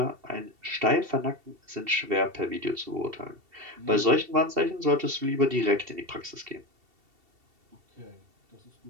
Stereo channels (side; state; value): left; late; 2.7 ms